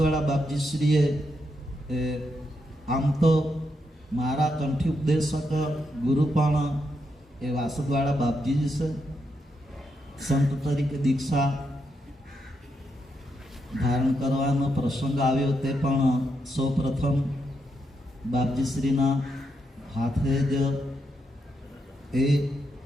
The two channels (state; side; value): normal; both; correlation 0.81